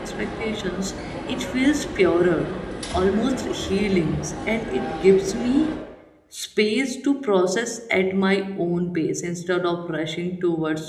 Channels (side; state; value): both; identical; correlation 1.00